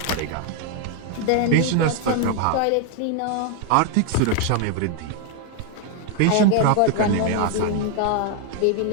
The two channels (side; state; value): both; different; correlation 0.00